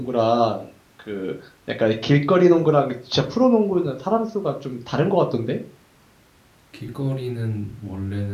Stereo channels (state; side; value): identical; both; correlation 1.00